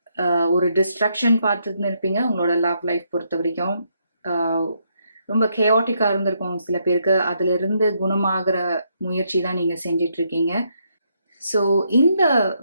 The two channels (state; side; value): inverted; both; correlation -0.76